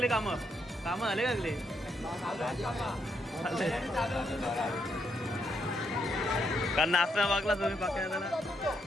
कामं झाले का? कारण नाश्ता बघला तुम्ही पाक्याला।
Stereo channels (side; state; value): both; normal; correlation 0.78